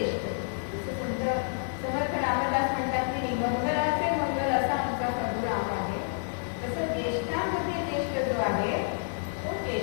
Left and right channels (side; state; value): right; silent; digital silence